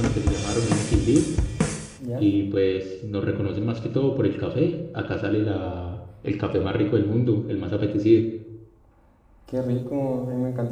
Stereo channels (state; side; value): identical; both; correlation 1.00